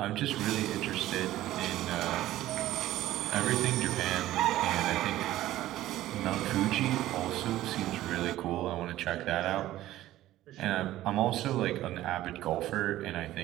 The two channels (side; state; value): left; quieter; 14.8 dB